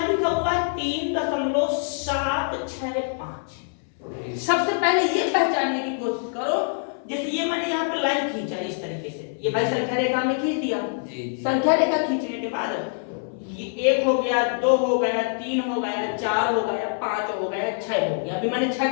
लिखा हुआ है 3.765। सबसे पहले ये पहचानने की कोशिश करो, जैसे ये मैंने यहाँ पे लाइन खींचा इस तरीके से, ये भाई संख्या रेखा में खींच दिया। संख्या रेखा खींचने के बाद ये 1 हो गया, 2 हो गया, 3 हो गया, 4 हो गया, 5 हो गया, 6 हो गया। अभी मैंने 6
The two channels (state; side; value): silent; right; 62 dB below the other